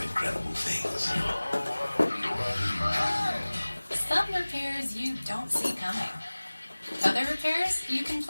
incredible things. Some repairs you don't see coming. Other repairs you can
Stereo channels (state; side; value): inverted; both; correlation -1.00